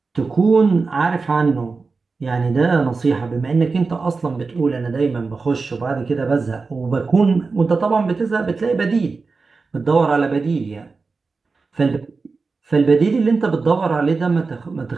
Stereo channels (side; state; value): left; quieter; 4.3 dB